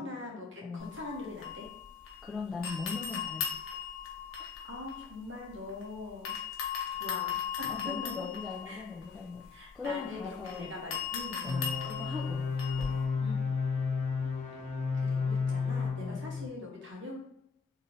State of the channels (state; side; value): quieter; right; 5.1 dB